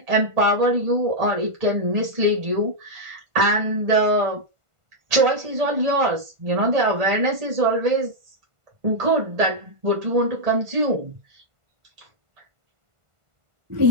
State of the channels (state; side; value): late; left; 1.5 ms